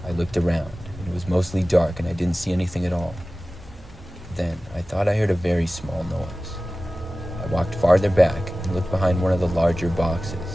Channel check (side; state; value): both; normal; correlation 0.97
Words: I looked around, and it was mostly dark, and I didn't see anything at all. Then, I thought I heard a very small noise. I walked farther back and looked behind one of the larger